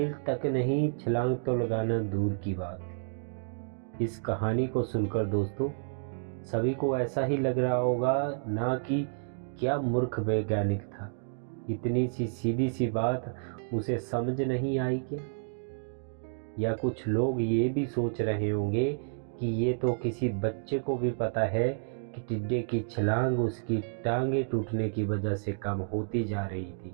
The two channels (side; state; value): left; silent; digital silence